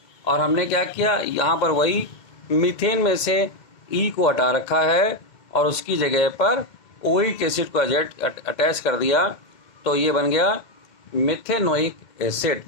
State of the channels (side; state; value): right; late; 2.0 ms